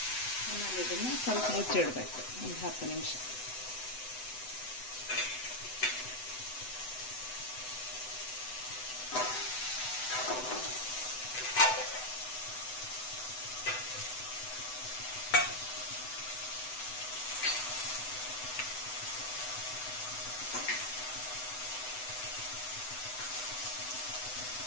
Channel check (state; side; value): late; right; 7.9 ms